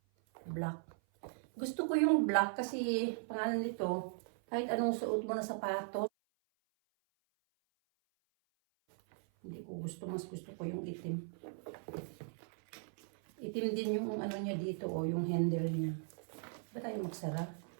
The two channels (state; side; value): silent; left; 52 dB below the other